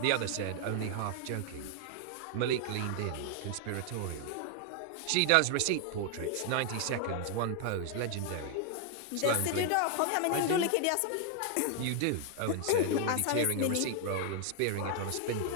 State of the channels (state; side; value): different; both; correlation 0.00